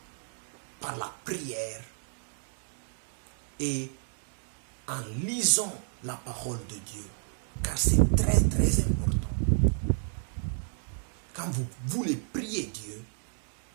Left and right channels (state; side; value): silent; left; 57 dB below the other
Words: par la prière et en lisant la parole de Dieu, car c'est très très important. Quand vous voulez prier Dieu,